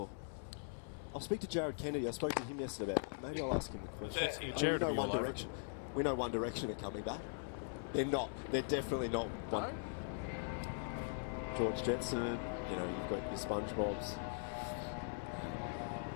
I'll speak to Jared Kennedy. I spoke to him yesterday about it. Maybe I'll ask him a question. We know One Direction. We know One Direction are coming back. They're not. They're definitely not one. George Jetson, you know, you've got your SpongeBobs.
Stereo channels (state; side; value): silent; right; 50 dB below the other